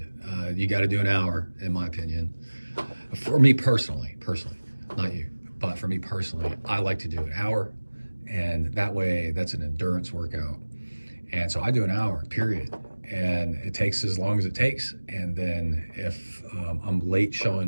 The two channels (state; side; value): inverted; both; correlation -1.00